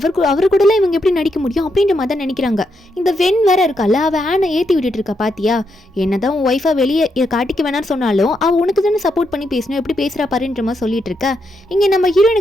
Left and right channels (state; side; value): normal; both; correlation 0.81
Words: கூடலாம் இவங்க எப்படி நடிக்க முடியும் அப்படின்ற மாதிரி தான் நினைக்கிறாங்க. இந்த வெண் வேற இருக்கால, அவள் ஆனை ஏற்றி விட்டுட்டு இருக்கா. பாத்தியா, என்னதான் உன் ஒய்ஃபை வெளியே காட்டிக்க வேணான்னு சொன்னாலும் அவள் உனக்கு தானே சப்போர்ட் பண்ணி பேசணும், எப்படி பேசுகிறா பாருன்ற மாதிரி சொல்லிட்டு இருக்க. இங்கே நம்ம